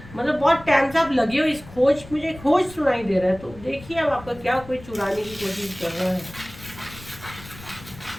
मतलब बहुत टाइम से आप लगे हो इस खोज, मुझे खोज सुनाई दे रहा है। तो देखिए अब आपका क्या कोई चुराने की कोशिश कर रहा है।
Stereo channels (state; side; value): noise; left; rumble, 18 dB below the sound